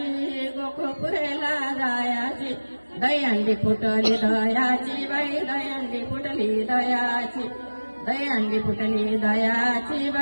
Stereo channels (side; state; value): both; inverted; correlation -1.00